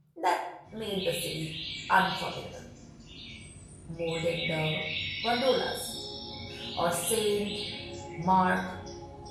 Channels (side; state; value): both; identical; correlation 1.00